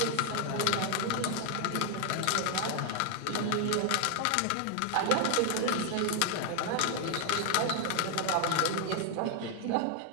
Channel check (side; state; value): both; different; correlation 0.00